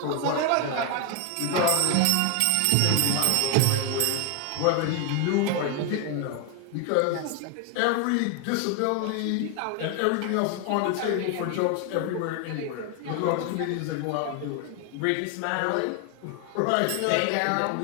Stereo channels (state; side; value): different; both; correlation 0.01